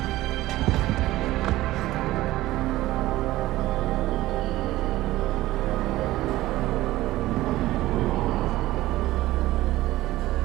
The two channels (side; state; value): left; quieter; 16.6 dB